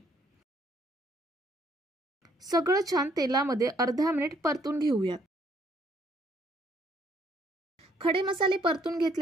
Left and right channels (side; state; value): both; normal; correlation 0.67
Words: सगळं छान तेलामध्ये अर्धा मिनिट परतून घेऊयात। खडे मसाले परतून